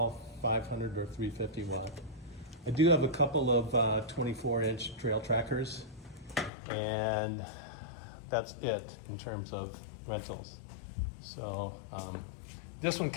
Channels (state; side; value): drops out; right; at 6.5 s